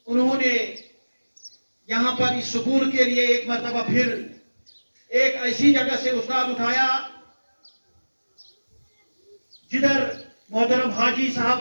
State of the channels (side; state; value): both; inverted; correlation -1.00